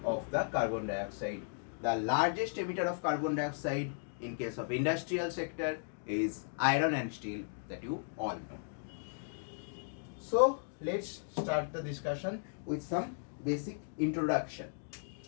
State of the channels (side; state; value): right; silent; digital silence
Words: of the carbon dioxide. The largest emitter of carbon dioxide in case of industrial sector is iron and steel, that you all know. So let's start the discussion with some basic introduction.